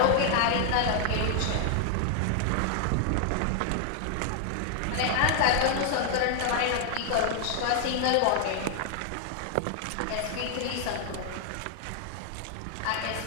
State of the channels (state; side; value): different; both; correlation 0.00